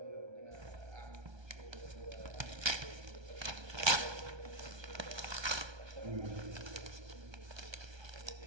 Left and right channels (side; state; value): left; late; 1.3 ms